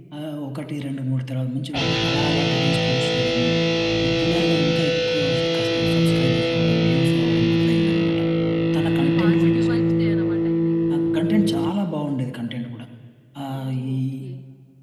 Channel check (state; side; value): identical; both; correlation 1.00